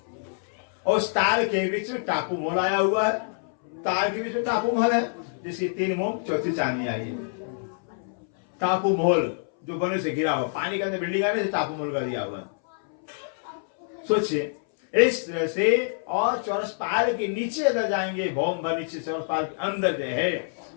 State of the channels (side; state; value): right; silent; 61 dB below the other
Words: और उस ताल के बीच में टापू मोल आया हुआ है, ताल के बीच में टापू महल है, जिसकी 3 मोम चौथी चांदनी आई है। टापू महल जो बने से घिरा हुआ, पानी के अंदर बिल्डिंग आने से टापू महल का दिया हुआ है। सोचिए इस तरह से। और चौरस पाल के नीचे अगर जाएंगे, भौम भर नीचे चौरस पाल के अंदर जो है